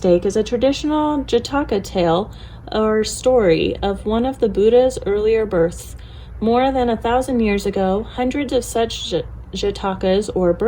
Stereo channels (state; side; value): identical; both; correlation 1.00